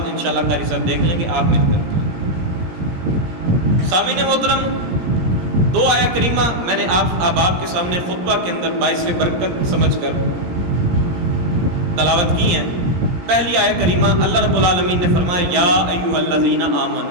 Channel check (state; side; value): late; left; 17 ms